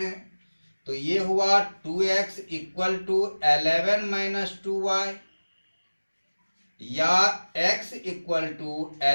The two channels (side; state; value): both; inverted; correlation -1.00